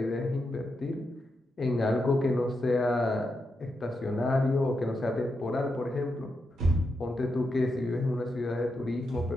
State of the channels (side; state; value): both; normal; correlation 0.85